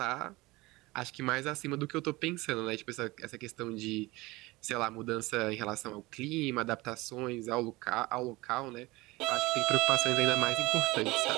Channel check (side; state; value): left; quieter; 21.4 dB